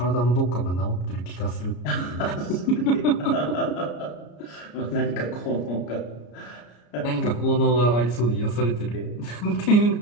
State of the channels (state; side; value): late; right; 34 ms